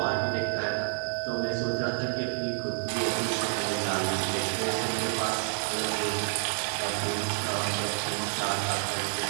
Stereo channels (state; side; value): silent; left; digital silence